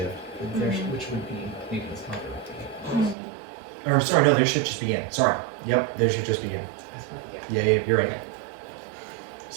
Which would be maybe this month. Or sorry, no, their shift just began. Sorry. Yep, their shift just began. Yeah, you're right. It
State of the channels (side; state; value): left; drops out; at 3.2 s